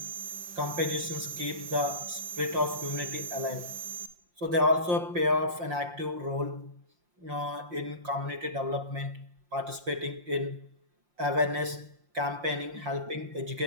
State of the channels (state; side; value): late; left; 5.7 ms